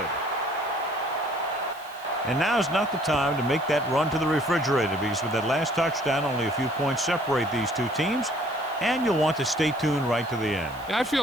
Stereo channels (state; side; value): noise; right; hiss, 23 dB below the sound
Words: And now's not the time to make that run to the refrigerator, because with that last touchdown, only a few points separate these two teams, and you'll want to stay tuned right to the end. Yeah, I